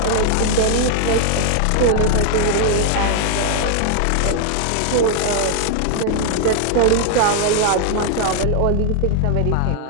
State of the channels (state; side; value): different; both; correlation 0.00